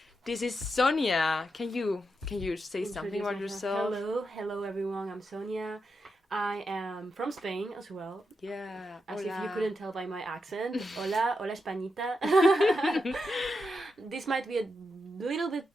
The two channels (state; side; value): normal; both; correlation 0.86